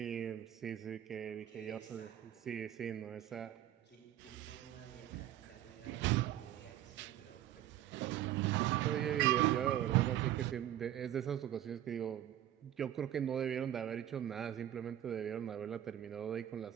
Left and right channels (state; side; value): quieter; left; 12.1 dB